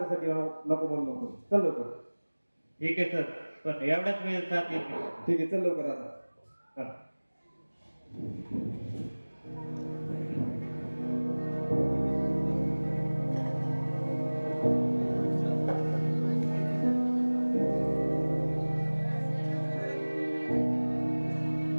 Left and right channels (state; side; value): inverted; both; correlation -1.00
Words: नको म्हणू नको. चल लवकर. ठीक आहे सर, पण एवढ्याच वेळेस साथ येत नाही. ठीक आहे, चल लवकर आता. चला.